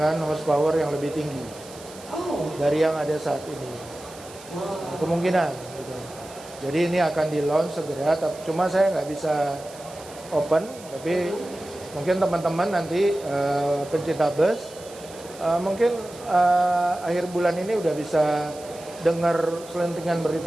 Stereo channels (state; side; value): noise; right; hiss, 19 dB below the sound